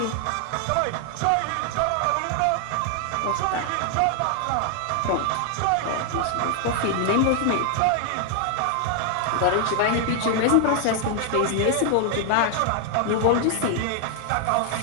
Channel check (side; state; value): both; different; correlation 0.00